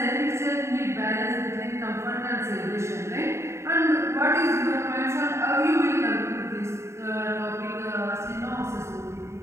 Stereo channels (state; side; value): late; left; 0.13 ms